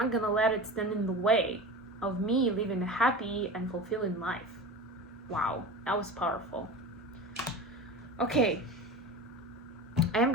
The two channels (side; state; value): both; normal; correlation 0.31